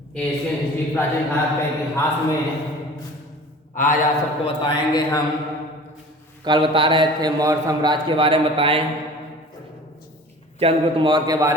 Asian history प्राचीन भारत के इतिहास में आज आप सबको बताएंगे हम। कल बता रहे थे मौर्य साम्राज्य के बारे में बताएं। चंद्रगुप्त मौर्य के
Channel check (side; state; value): both; normal; correlation 0.42